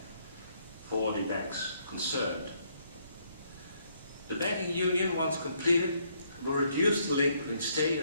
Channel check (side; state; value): both; inverted; correlation -0.71